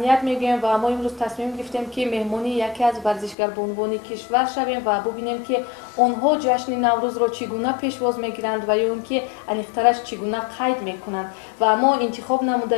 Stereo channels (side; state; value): right; drops out; at 3.4 s